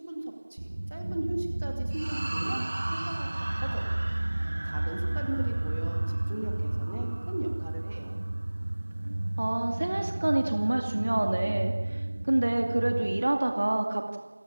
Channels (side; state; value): both; inverted; correlation -1.00